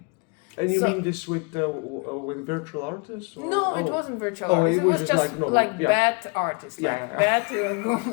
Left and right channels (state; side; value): quieter; right; 31.9 dB